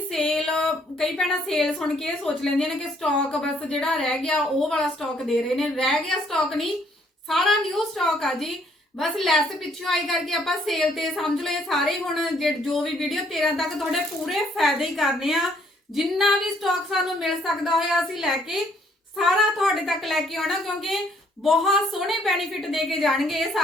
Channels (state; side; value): normal; both; correlation 0.66